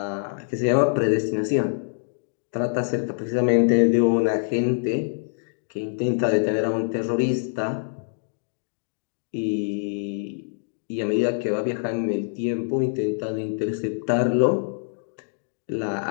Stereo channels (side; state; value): right; silent; digital silence